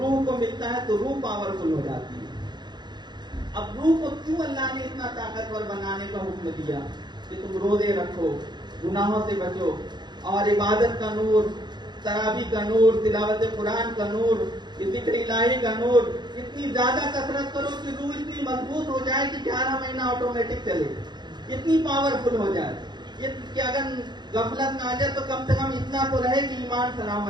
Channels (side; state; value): left; late; 0.21 ms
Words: کو ملتا ہے تو روح پاورفل ہو جاتی ہے. اب روح کو کیوں اللہ نے اتنا طاقتور بنانے کا حکم دیا کہ تم روزے رکھو، گناہوں سے بچو، اور عبادت کا نور، تراویح کا نور، تلاوت قرآن کا نور، ذکر الہی کا نور، اتنی زیادہ کثرت کرو کہ روح اتنی مضبوط ہو جائے کہ 11 مہینہ آٹومیٹک چلے، اتنی پاورفل ہو جائے کہ اگر غفلت نہ آ جائے تو کم سے کم اتنا تو رہے کہ ایمان